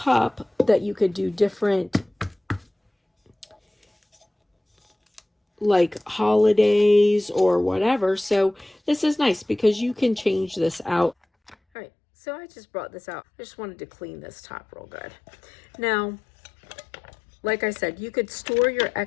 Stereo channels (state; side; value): drops out; right; at 11.6 s